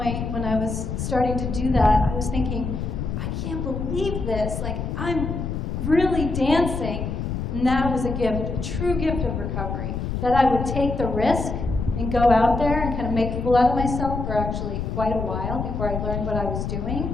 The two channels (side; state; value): left; noise; rumble, 3 dB below the sound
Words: when I was starting to do that, I was thinking, I can't believe this. Like, I'm really dancing. And that was a gift, a true gift of recovery, that I would take the risk and go out there and kind of make a fool out of myself for actually quite a while before I learned what I was